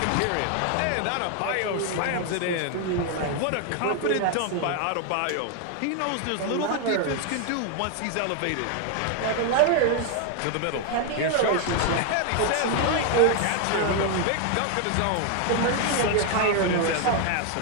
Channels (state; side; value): different; both; correlation 0.00